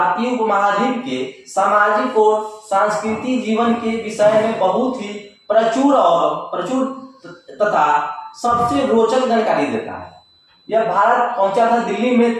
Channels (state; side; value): identical; both; correlation 1.00